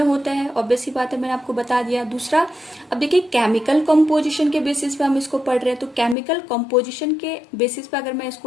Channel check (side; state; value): right; drops out; at 6.2 s